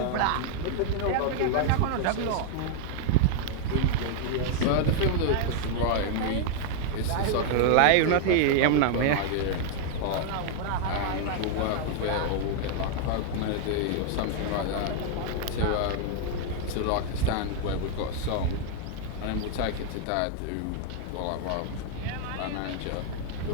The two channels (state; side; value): different; both; correlation 0.00